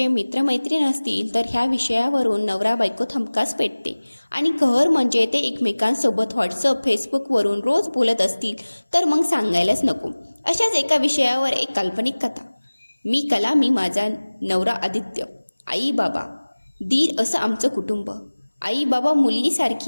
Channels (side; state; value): both; inverted; correlation -1.00